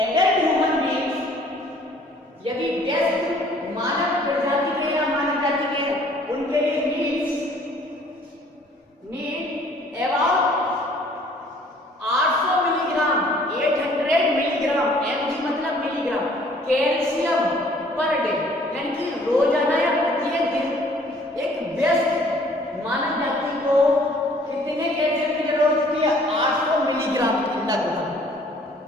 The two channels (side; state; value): both; normal; correlation 0.57